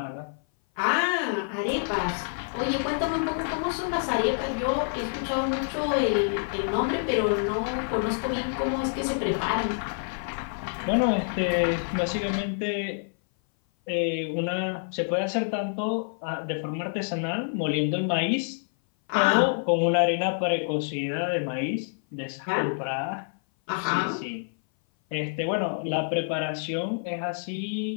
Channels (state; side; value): silent; right; 57 dB below the other